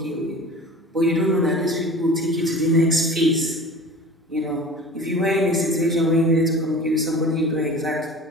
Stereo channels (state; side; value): normal; both; correlation 0.39